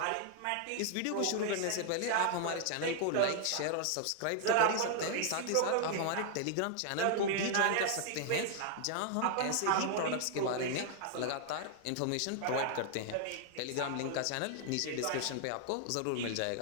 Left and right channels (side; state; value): both; different; correlation 0.00